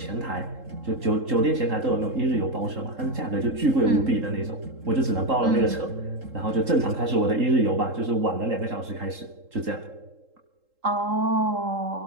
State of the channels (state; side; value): late; left; 3.8 ms